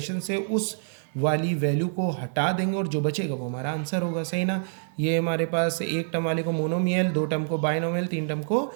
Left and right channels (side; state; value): left; silent; digital silence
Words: से उस वाली वैल्यू को हटा देंगे और जो बचेगा वो हमारा आंसर होगा, सही ना। ये हमारे पास एक टर्म वाले को मोनोमियल, दो टर्म को बाइनोमियल, तीन टर्म को